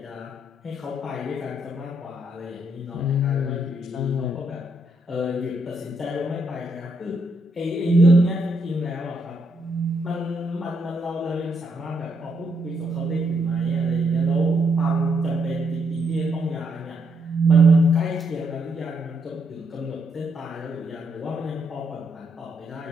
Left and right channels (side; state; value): both; normal; correlation 0.76